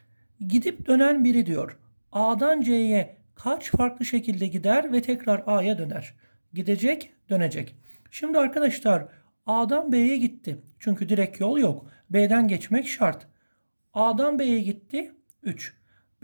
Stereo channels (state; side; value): inverted; both; correlation -1.00